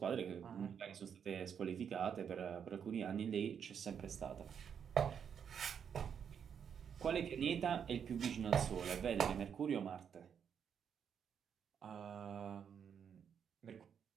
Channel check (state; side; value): quieter; left; 7.7 dB